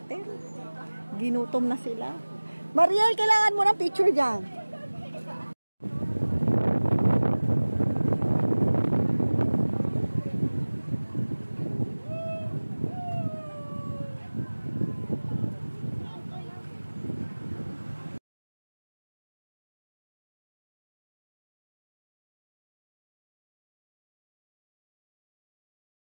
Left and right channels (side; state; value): both; inverted; correlation -1.00